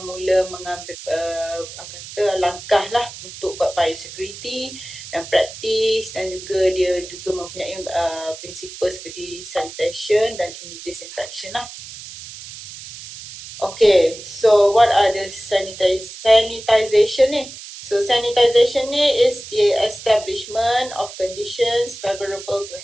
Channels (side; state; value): right; noise; hiss, 13 dB below the sound